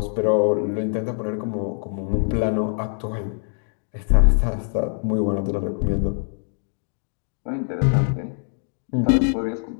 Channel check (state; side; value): silent; right; 63 dB below the other